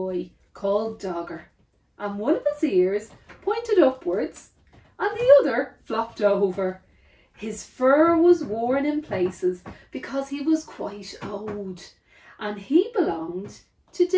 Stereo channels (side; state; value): both; identical; correlation 1.00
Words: called Dogger, and one of his ears pointed upwards and the other flopped over. His fur was worn in places because he was quite old, and he belonged to